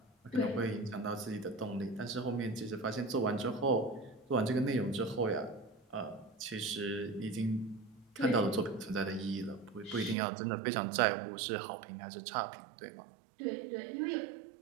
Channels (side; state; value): left; drops out; at 10.2 s